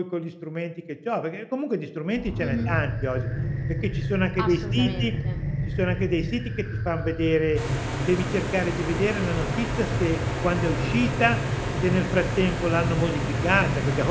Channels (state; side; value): identical; both; correlation 1.00